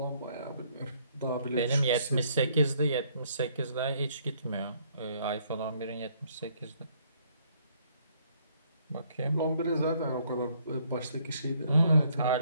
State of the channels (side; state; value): both; inverted; correlation -0.66